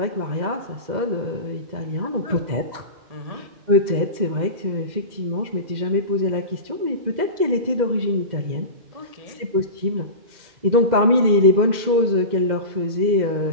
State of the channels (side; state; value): left; late; 2.1 ms